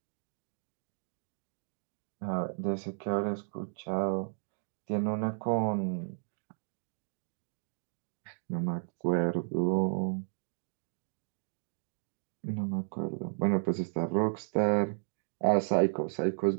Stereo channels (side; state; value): left; silent; digital silence